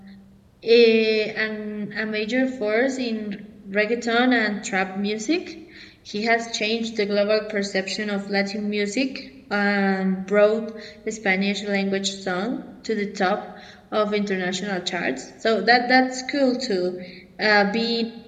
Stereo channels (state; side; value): identical; both; correlation 1.00